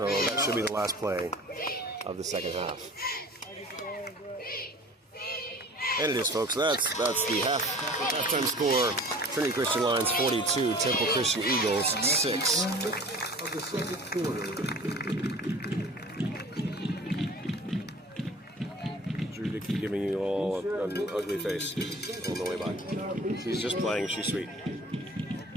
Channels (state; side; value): normal; both; correlation 0.44